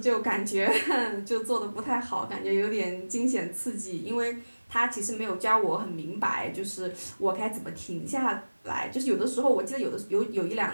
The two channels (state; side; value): inverted; both; correlation -1.00